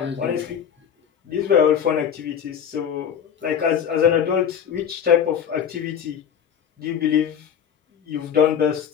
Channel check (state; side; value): quieter; right; 8.3 dB